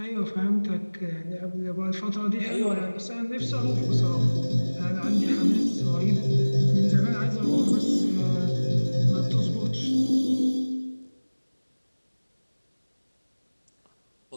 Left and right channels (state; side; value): inverted; both; correlation -1.00